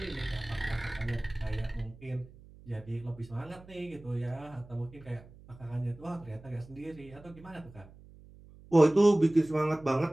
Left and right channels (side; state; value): right; noise; hum, 21 dB below the sound